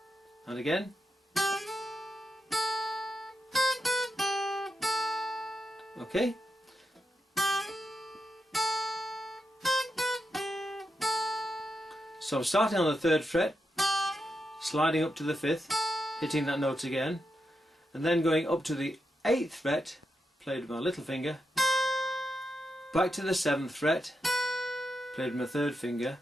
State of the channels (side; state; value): both; normal; correlation 0.86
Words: And again. Okay. So I'm starting on the 3rd fret, sliding up to the 5th, hitting that note again, and then going up to the 8th fret, played with my little finger, back to the 7th fret, played with my 3rd finger,